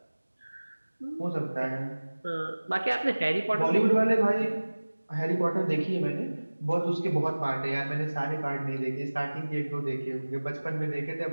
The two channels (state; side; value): inverted; both; correlation -1.00